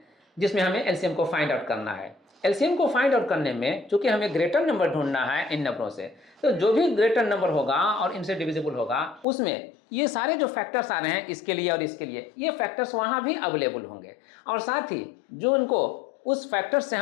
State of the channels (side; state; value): right; drops out; at 9.2 s